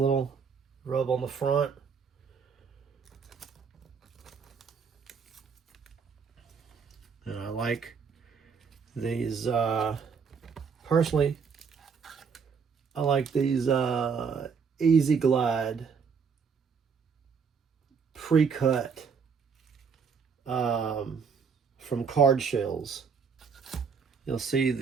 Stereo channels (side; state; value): left; quieter; 5.9 dB